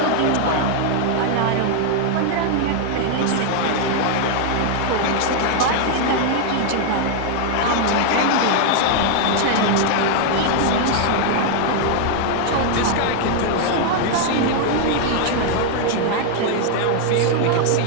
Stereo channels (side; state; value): both; different; correlation 0.00